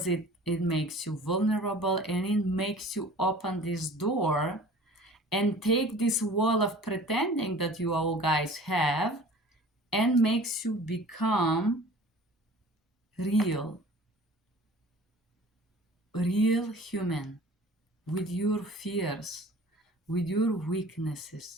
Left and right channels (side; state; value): both; normal; correlation 0.45